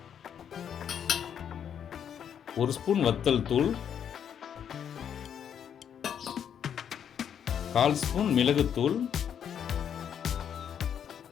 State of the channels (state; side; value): quieter; right; 8.6 dB